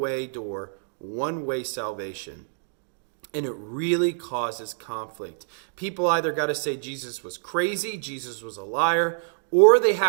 door, one-way salvation. And it really causes conflict. People either got to say Jesus was crazy, Jesus was a liar, or they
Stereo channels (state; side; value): silent; left; digital silence